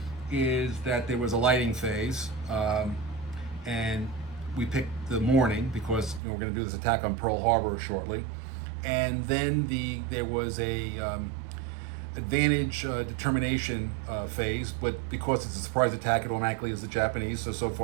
is that there was a lighting phase. And we picked the morning because we're going to do this attack on Pearl Harbor shortly. And then there was a advantage determination phase, but because it's a surprise attack, it automatically is the Japanese, so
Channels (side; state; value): left; drops out; at 6.2 s